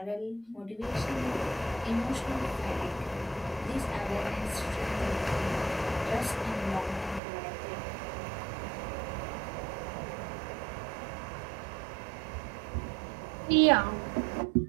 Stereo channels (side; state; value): left; drops out; at 7.2 s